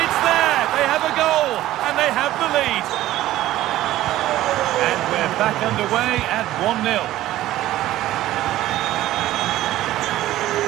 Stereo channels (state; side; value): quieter; left; 14.9 dB